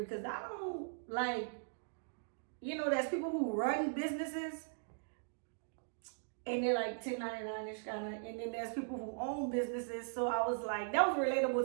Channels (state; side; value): silent; left; digital silence